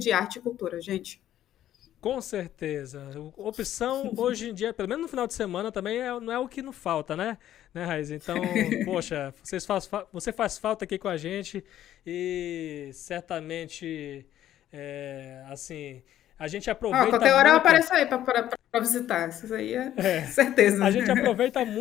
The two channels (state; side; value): quieter; right; 12.1 dB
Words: arte e cultura, gente. Com certeza. Opção, hoje em dia, pelo menos no final de semana, também não é o que não falta, né, Raiz? Então, poxa, você faz falta aqui com a gente e certamente, assim, a gente aproveita qualquer hora muito... eu apareço aí para visitar, isso aí é certeza. A gente aproveita